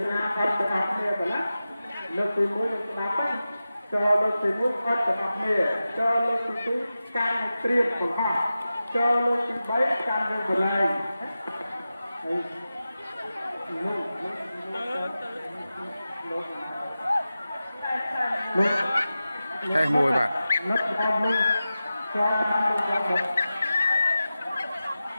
học từ học này phải lá lớp từ muối từ nhà bắt cho lớp từ muối bắt từ học này cho lớp từ túi can triệt của họ cho lớp từ bấy can được của lại thay mùi bạn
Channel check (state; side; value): inverted; both; correlation -0.94